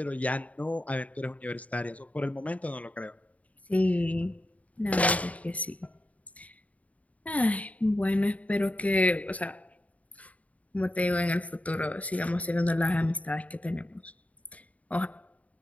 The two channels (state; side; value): late; right; 0.069 ms